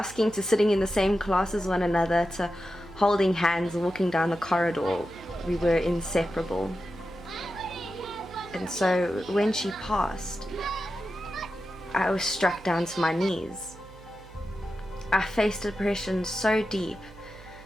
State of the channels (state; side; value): noise; right; hum, 20 dB below the sound